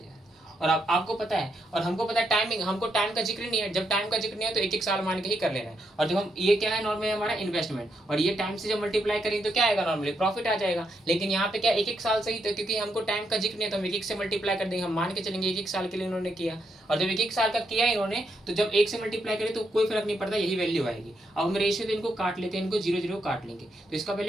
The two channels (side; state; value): both; normal; correlation 0.80